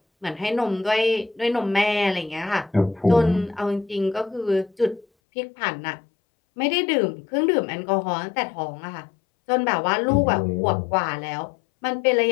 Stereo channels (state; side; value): drops out; right; at 5.1 s